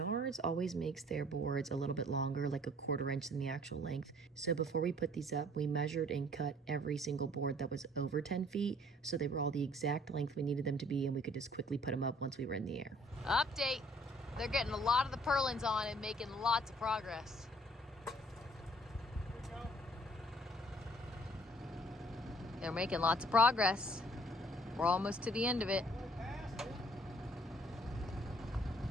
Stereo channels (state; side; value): normal; both; correlation 0.58